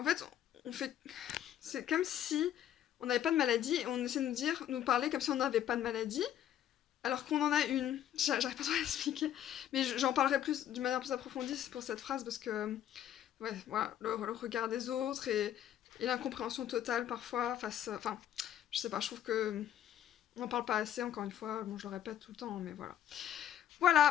fait on fait c'est comme si on n'avait pas de maladie et on essaie de nous parler comme si on n'avait pas de maladie, alors qu'on en a une. J'arrive pas trop à l'expliquer, mais j'en parlerai plus d'une manière plus approfondie pour cette phrase parce que ouais, voilà, le regard des autres et l'incompréhension totale parfois face, enfin, je sais pas, je trouve que on n'en parle pas assez encore une fois. Bon, je le répète tout le temps, mais voilà.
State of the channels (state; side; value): quieter; right; 10.9 dB